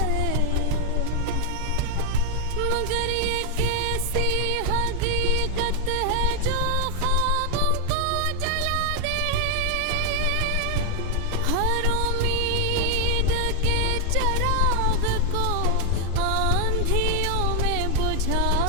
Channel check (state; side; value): different; both; correlation 0.00